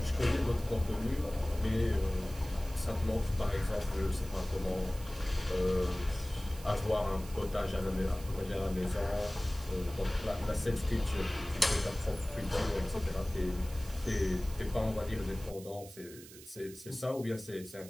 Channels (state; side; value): noise; right; hiss, 17 dB below the sound